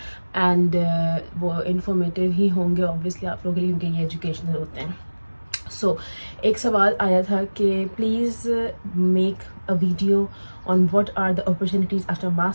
एंड वो इन्फॉर्मेटिव ही होंगे ऑब्वियसली आप लोगों के लिए क्योंकि ये एजुकेशनल होते हैं. सो एक सवाल आया था कि please make a video on what are the opportunities after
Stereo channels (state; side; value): inverted; both; correlation -1.00